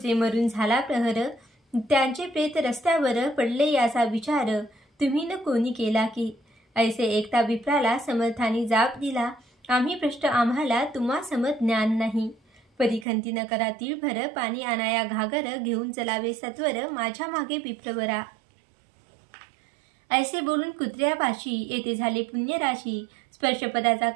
मरून झाला प्रहर त्यांचे प्रेत रस्त्यावर पडले याचा विचार तुम्ही न कोणी केला की ऐसे एकता विप्राला समर्थाने जाप दिला आम्ही भ्रष्ट आम्हाला तुम्हा समत ज्ञान नाही परिखंती न करा तिळभर पाणी आणाया घागर घेऊन चलावे सत्वर माझ्या मागे विप्रवरा ऐसे बोलून कुत्र्यापाशी येथे झाले पुण्यराशी स्पर्शपदाचा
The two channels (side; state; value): left; drops out; at 13.1 s